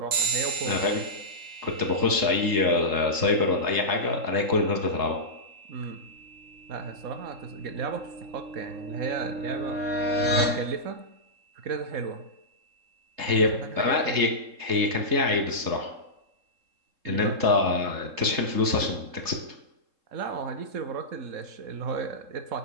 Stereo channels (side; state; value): left; late; 3.7 ms